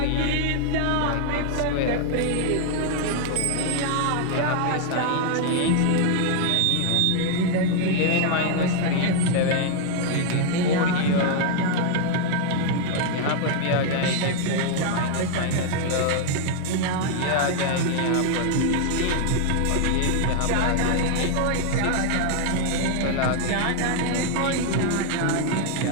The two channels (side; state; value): both; different; correlation 0.00